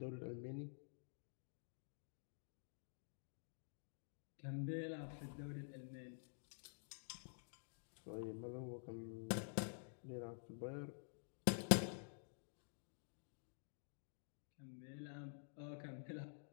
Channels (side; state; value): right; silent; digital silence